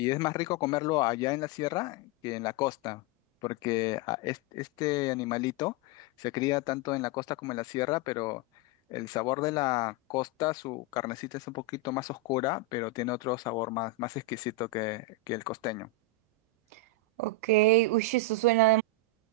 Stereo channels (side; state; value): both; normal; correlation 0.01